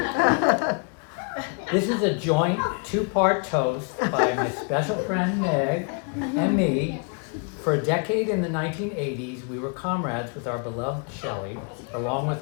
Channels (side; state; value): right; quieter; 38.7 dB